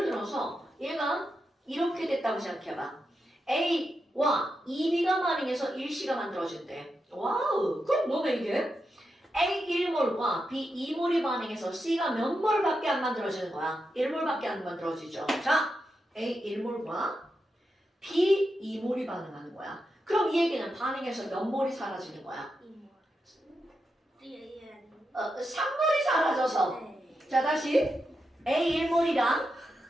들어서 얘가 이렇게 됐다고 생각해봐. A와 2B가 반응해서 1C가 만들어진대. 와우, 그럼 너네 이게 A 1몰과 B 2몰이 반응해서 C가 몇 몰밖에 안 만들어지는 거야? 1몰밖에 안 만들어지죠. 자, A 1몰과 B 2몰이 반응하는 거야. 그럼 이 얘기는 반응해서 몇 몰이 사라지는 거야? 3몰이 사라져서. 자, 다시 A 1몰이랑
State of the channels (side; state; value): both; normal; correlation 0.87